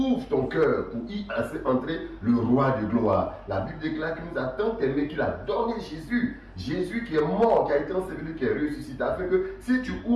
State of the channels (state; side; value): identical; both; correlation 1.00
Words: ton cœur pour y laisser entrer le roi de gloire. La Bible déclare qu'il nous a tant aimé qu'il a donné Jésus. Jésus qui est mort, qui a été enseveli, qui est ressuscité, afin que si tu